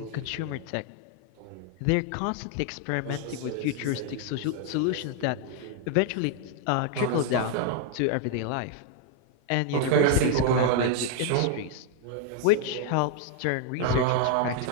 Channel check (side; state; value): both; different; correlation 0.00